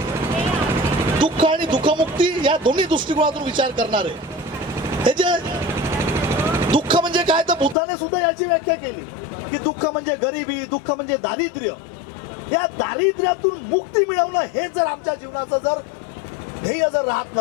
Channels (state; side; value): drops out; right; at 7.8 s